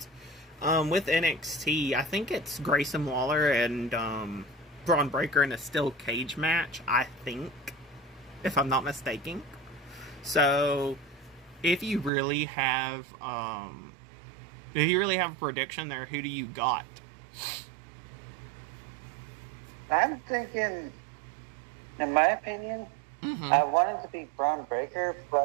With NXT, I think it's Grayson Waller and Braun Breaker in a steel cage match, I think, if I'm not mistaken. So, if you really have a prediction there, who do you got? I'm thinking, in my opinion, I want it to be Braun Breaker,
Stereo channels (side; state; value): left; drops out; at 12.1 s